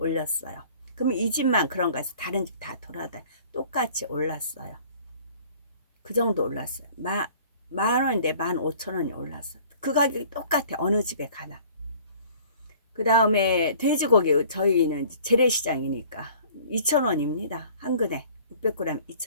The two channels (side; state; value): both; inverted; correlation -0.51